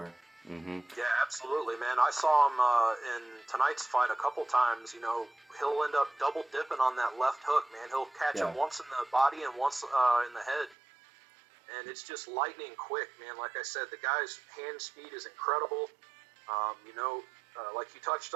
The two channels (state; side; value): drops out; left; at 10.8 s